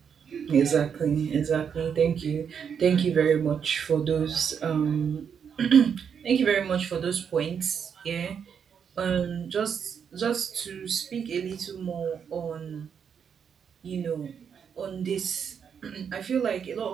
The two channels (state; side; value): quieter; left; 7.3 dB